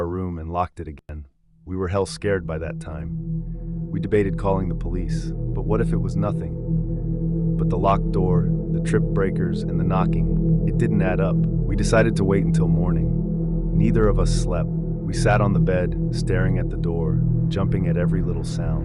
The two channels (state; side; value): identical; both; correlation 1.00